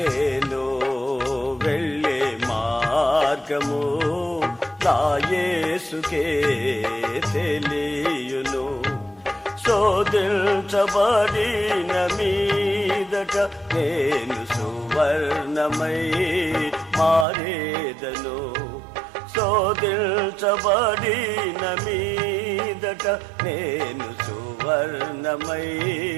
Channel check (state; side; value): drops out; left; at 17.2 s